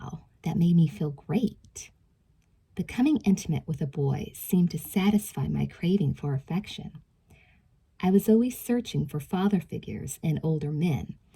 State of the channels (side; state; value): both; identical; correlation 1.00